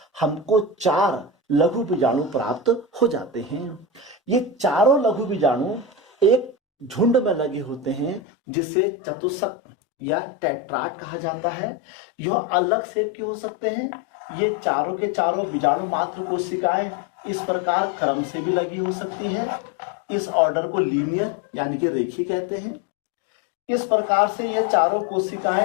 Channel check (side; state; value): right; drops out; at 8.2 s